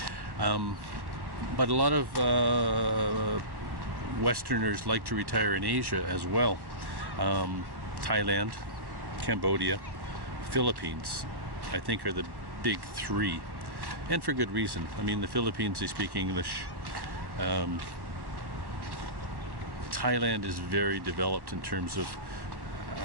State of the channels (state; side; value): late; left; 1.1 ms